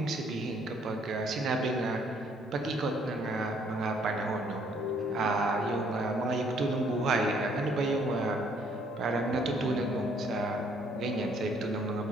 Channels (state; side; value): normal; both; correlation 0.65